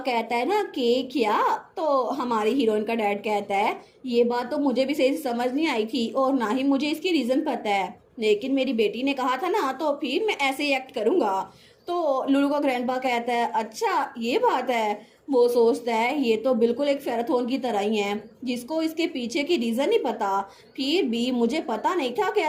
कहता है ना कि क्या, तो हमारी हीरोइन का डैड कहता है ये बात तो मुझे भी सही से समझ नहीं आई थी और ना ही मुझे इसकी रीजन पता है, लेकिन मेरी बेटी ने कहा था ना तो फिर मैं ऐसे ही एक्ट करूंगा। तो लूलू का ग्रैंडपा कहता है अच्छा ये बात है। वो सोचता है ये तो बिल्कुल एक फेराथोन की तरह ही है जिसको इसके पीछे की रीजन नहीं पता। फिर भी मुझे पता नहीं था कि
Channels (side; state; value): both; identical; correlation 1.00